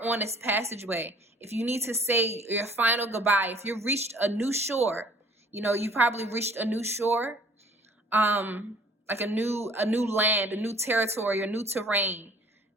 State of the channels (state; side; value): normal; both; correlation 0.53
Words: on this passageway. If you need to say your final goodbye, if you've reached a new shore, you probably reached a new shore, like a new land, a new territory, a new terrain.